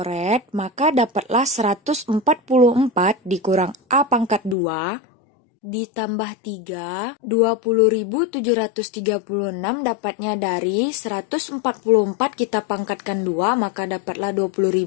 maka dapatlah 144 dikurang A pangkat 2 ditambah 3, 20.736 dapatnya dari 144 kita pangkatkan 2, maka dapatlah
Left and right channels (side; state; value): right; drops out; at 4.5 s